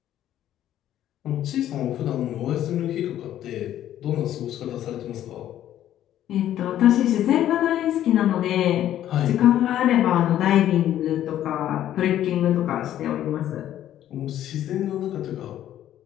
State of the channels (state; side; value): quieter; right; 11.8 dB